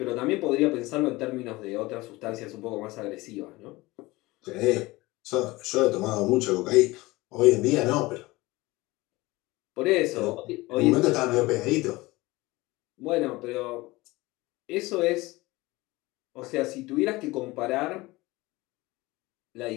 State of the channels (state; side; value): quieter; right; 20.9 dB